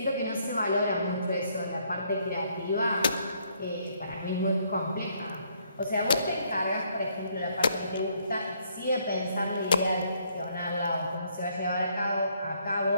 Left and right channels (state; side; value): inverted; both; correlation -0.69